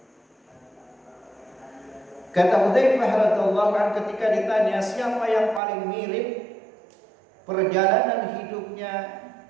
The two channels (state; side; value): drops out; left; at 5.6 s